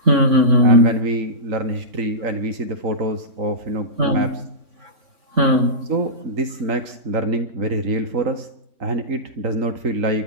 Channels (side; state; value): left; late; 3.6 ms